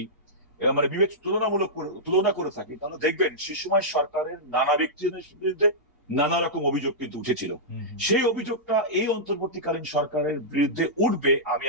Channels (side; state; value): both; normal; correlation -0.13